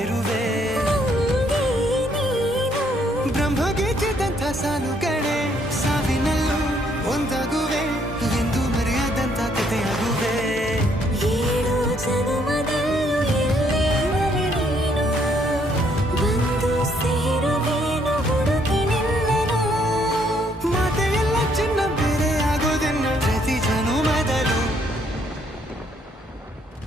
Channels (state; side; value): normal; both; correlation 0.69